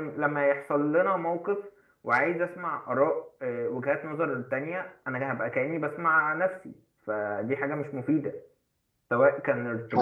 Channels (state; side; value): identical; both; correlation 1.00